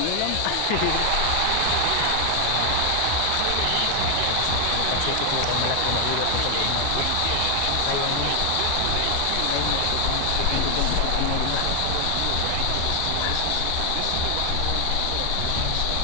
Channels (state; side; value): different; both; correlation 0.00